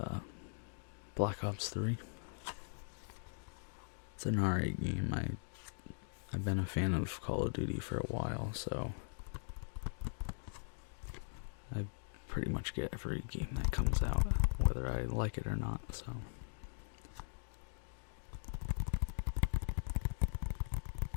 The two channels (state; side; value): silent; right; digital silence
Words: Black Ops 3. It's an alright game. I've been a fan of Call of Duty for a while, so I pretty much get every game that comes out, whether I like it or not, so